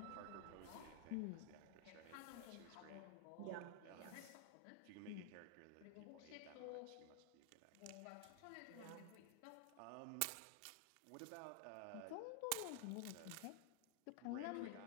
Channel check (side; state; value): both; different; correlation 0.00